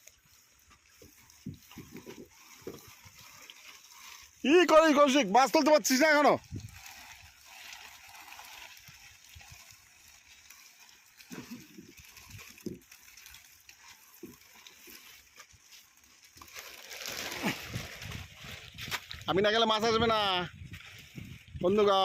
কি করিস কৌশিক মাছ তুলতে পারছিস না এখনো আমি না গেলে মাছ আসবে না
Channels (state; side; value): identical; both; correlation 1.00